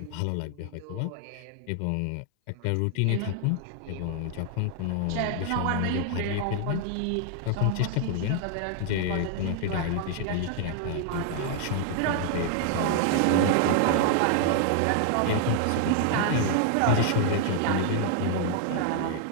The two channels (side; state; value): both; different; correlation 0.00